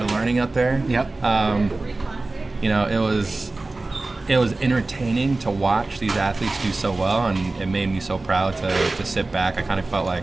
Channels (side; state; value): left; quieter; 3.2 dB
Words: of learning up there. It was entertaining to watch these athletes do so well, and it made me so proud to sit back. I kind of felt